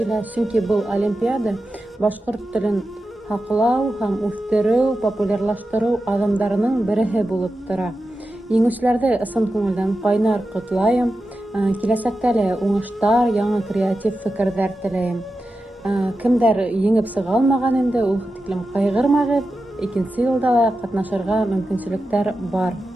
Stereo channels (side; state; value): both; normal; correlation 0.91